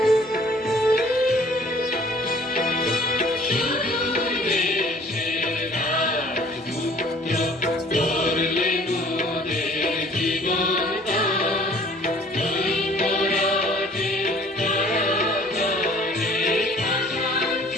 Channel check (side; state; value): both; normal; correlation 0.53